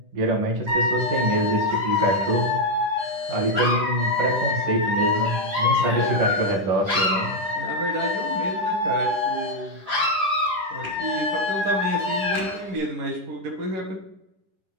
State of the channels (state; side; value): late; left; 10 ms